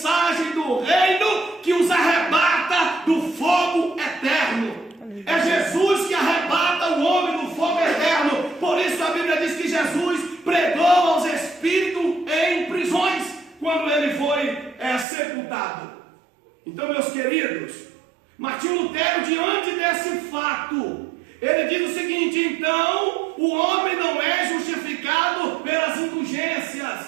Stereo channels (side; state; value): left; drops out; at 15.1 s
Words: do reino que os arrebata do fogo eterno. É Jesus que arrebata o homem do fogo eterno. Por isso a Bíblia diz que Jesus pregou aos espíritos em prisões quando ele foi sepultado. Então, meus queridos, Martinho Lutero, diante desse fato, ele diz o seguinte: então o homem não é justificado pelas